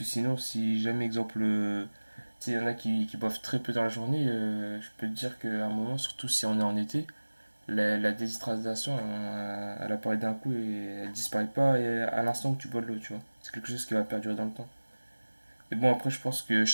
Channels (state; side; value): inverted; both; correlation -1.00